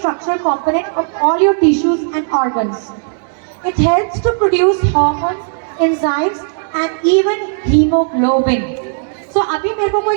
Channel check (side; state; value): left; silent; digital silence